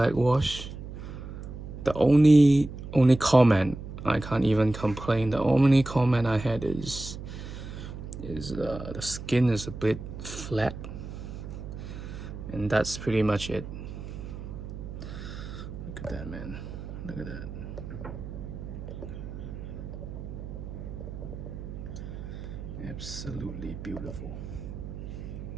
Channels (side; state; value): right; noise; hum, 10 dB below the sound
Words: wash. The only comment, I can't even complain. The only comment I had is the skin is a bit flat, and that's pretty much it. Look at that, man. Look at that. Absolutely beautiful.